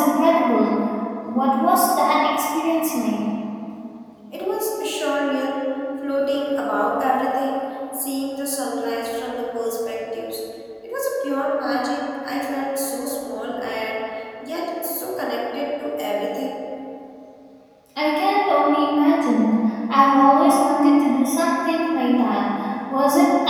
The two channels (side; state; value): both; identical; correlation 1.00